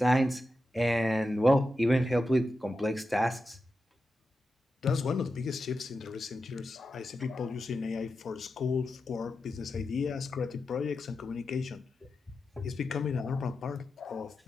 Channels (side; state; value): both; normal; correlation 0.90